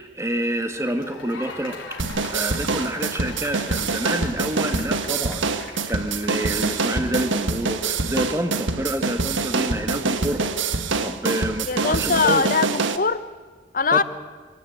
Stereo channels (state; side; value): normal; both; correlation 0.19